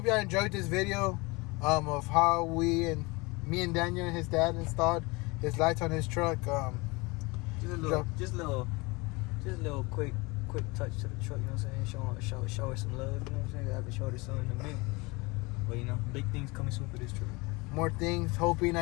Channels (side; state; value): right; quieter; 25.5 dB